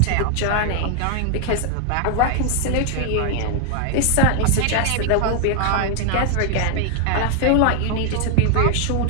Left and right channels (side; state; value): both; different; correlation 0.00